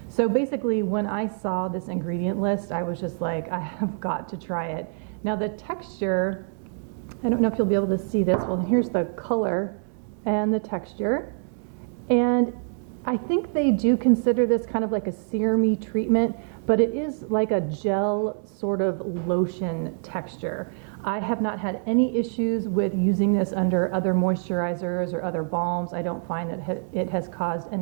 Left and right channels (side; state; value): left; silent; 61 dB below the other